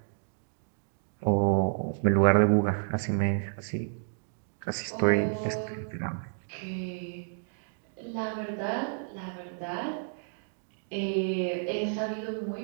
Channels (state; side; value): silent; left; digital silence